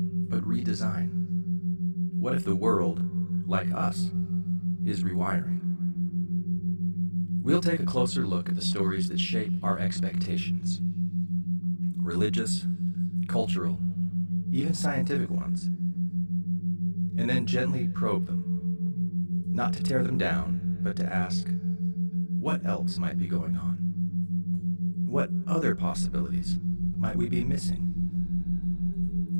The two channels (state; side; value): inverted; both; correlation -1.00